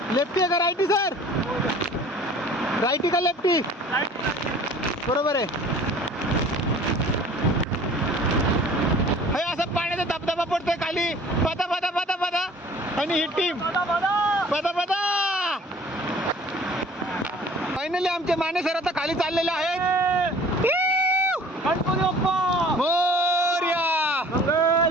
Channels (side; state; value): both; normal; correlation 0.49